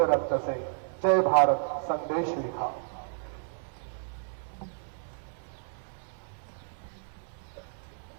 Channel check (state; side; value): silent; left; 57 dB below the other